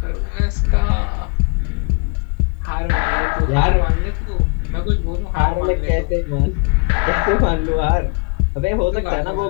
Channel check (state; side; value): quieter; right; 33.0 dB